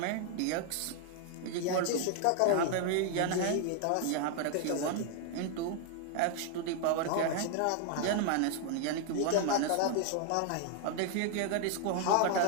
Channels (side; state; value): both; different; correlation 0.00